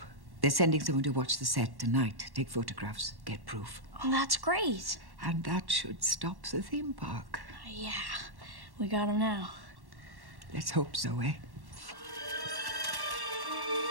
They're sending someone to watch the set tonight, take photographs, get proof. Oh, that's great. And that should stop the theme park. Yeah, we got him now. Let's hope so, eh?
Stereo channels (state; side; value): late; left; 1.1 ms